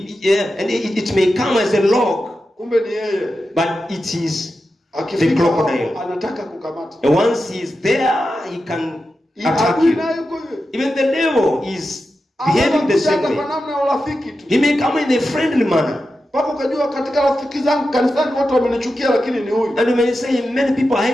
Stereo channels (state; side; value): normal; both; correlation 0.91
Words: And it may come as a log, Kumbe ni yeye. but it is the Akifika crocodile. anataka kukamata. And once he is there, he can attack Adui you. naye yuko hivyo. Even the devil is behaving the same Anakuja way. kwa namna ya urafiki tu. He may come in a friendly manner. Mpaka ukajua katika rafiki zangu kanisani watu wamenichukia, lakini ni huyu. And you may say many people are